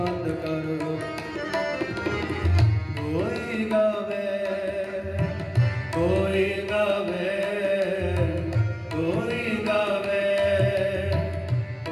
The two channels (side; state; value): both; identical; correlation 1.00